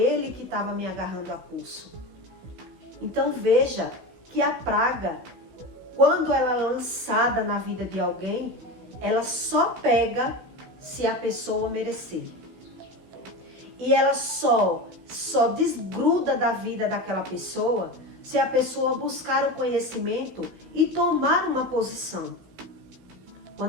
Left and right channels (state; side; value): late; left; 16 ms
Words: que estava me agarrando a pulso. Então veja que a praga, quando ela é lançada na vida de alguém, ela só pega se a pessoa merecer. E ela só desgruda da vida daquela pessoa se a pessoa buscar o conhecimento e tomar uma posição.